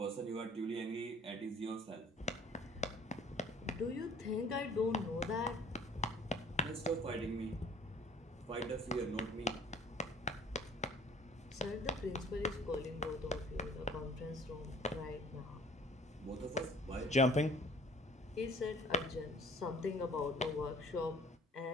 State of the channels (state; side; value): normal; both; correlation 0.53